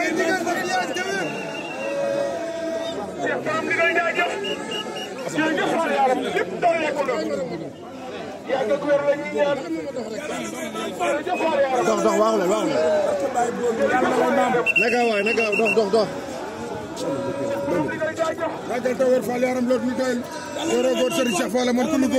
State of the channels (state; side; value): identical; both; correlation 1.00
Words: ndigal na fi yàgg tëwër Cheikh Borom ndigal jaajëf jërëjëf Fall yaaram lépp doole ko doon yàgg ak wér la ñuy ñaan jërëjëf Fall yaaram dox waaw la naka waay naka dox ragal tëwër Fall yaaram loolu ñu doyal góor góor Serigne Cheikh Fall man ku ñu